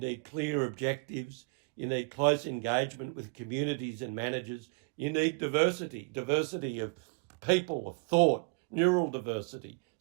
clear objectives, you need close engagement with communities and managers, you need diversity of people, of thought, neural diversity,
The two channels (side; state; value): left; quieter; 32.1 dB